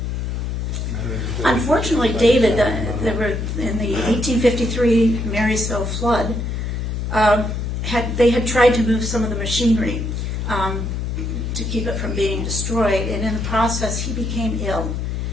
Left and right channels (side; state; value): left; noise; hum, 2 dB below the sound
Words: Unfortunately, David, there were in the 1853 Marysville flood, they had tried to move some of the machinery to keep it from being destroyed, and in the process he became ill.